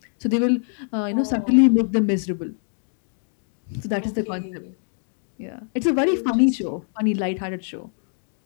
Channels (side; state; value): right; silent; 61 dB below the other